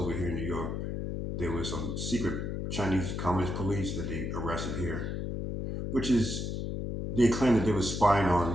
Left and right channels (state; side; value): noise; left; hum, 3 dB below the sound